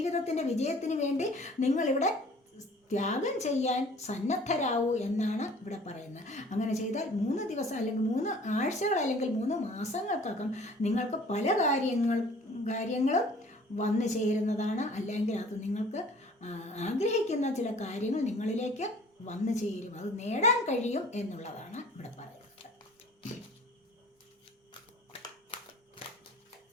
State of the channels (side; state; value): both; normal; correlation 0.50